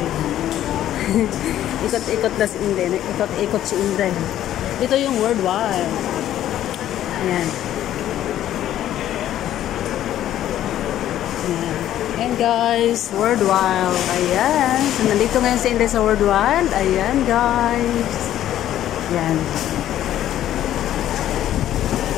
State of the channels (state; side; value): quieter; right; 12.1 dB